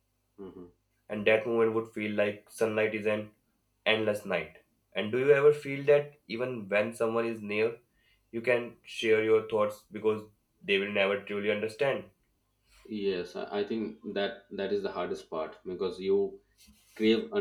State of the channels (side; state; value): both; identical; correlation 1.00